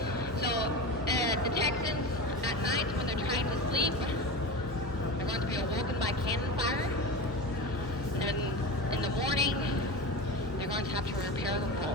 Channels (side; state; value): both; normal; correlation 0.26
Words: So the Texans at night, when they're trying to sleep, they're going to be awoken by cannon fire. And in the morning, they're going to have to repair the